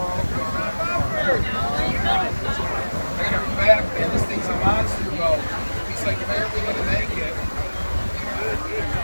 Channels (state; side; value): inverted; both; correlation -1.00